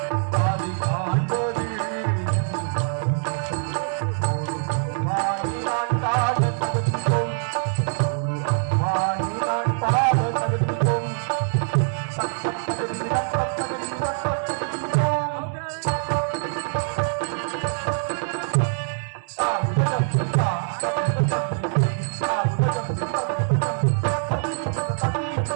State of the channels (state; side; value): silent; left; digital silence